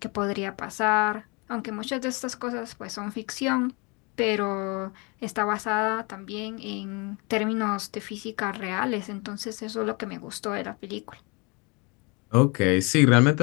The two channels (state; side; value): quieter; right; 29.7 dB